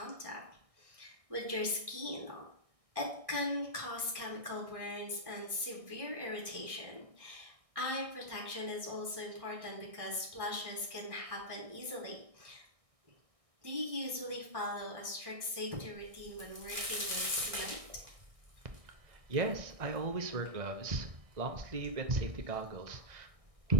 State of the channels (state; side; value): late; left; 1.6 ms